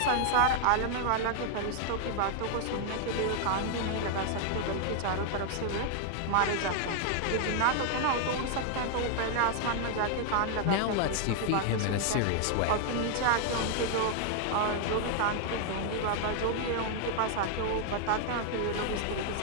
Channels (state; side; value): different; both; correlation 0.00